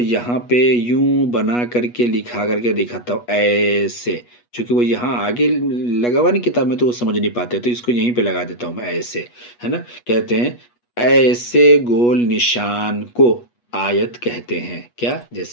پہ یوں بنا کر کے لکھا کر کے دکھاتا ہوں ایسے، چونکہ وہ یہاں آگے لگا ہوا نہیں کتاب میں تو وہ سمجھ نہیں پاتے، تو اس کو یہیں پہ لگا دیتا ہوں میں ایسے، ہے نا. کہتے ہیں ایسے گول نشان کو آیت کہتے ہیں. کیا؟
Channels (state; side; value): late; right; 8.3 ms